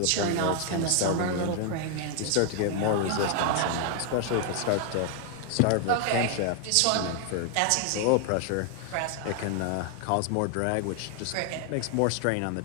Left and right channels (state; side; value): different; both; correlation 0.00